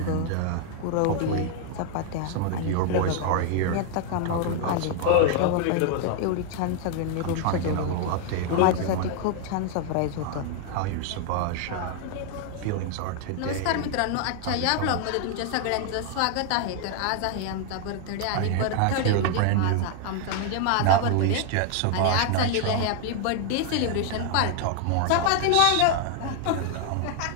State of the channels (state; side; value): different; both; correlation 0.00